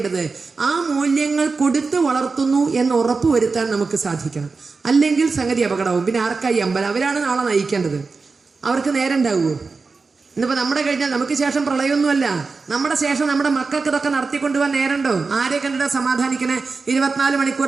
ആ മൂല്യങ്ങൾ കൊടുത്ത് വളർത്തുന്നു എന്ന് ഉറപ്പുവരുത്താൻ നമുക്ക് സാധിക്കണം. അല്ലെങ്കിൽ സംഗതി അപകടവും. പിന്നെ ആർക്കായി അമ്പലം? അവരാണ് നാളെ നയിക്കേണ്ടത്. അവർക്ക് നേരം ഉണ്ടാവുമോ? ഇന്നിപ്പോൾ നമ്മുടെ കഴിഞ്ഞാൽ നമുക്ക് ശേഷം പ്രളയമൊന്നുമല്ല, നമ്മുടെ ശേഷം നമ്മുടെ മക്കൾക്ക് ഇതൊക്കെ നടത്തിക്കൊണ്ടുപോകാൻ നേരമുണ്ടോ? ആരെ കണ്ടിട്ട് സമാധാനിക്കണേ? 24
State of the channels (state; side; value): quieter; left; 4.3 dB